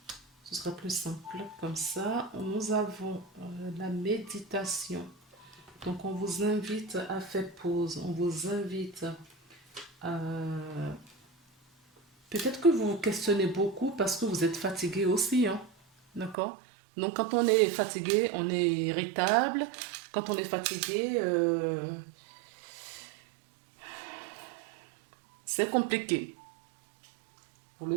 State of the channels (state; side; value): drops out; left; at 16.4 s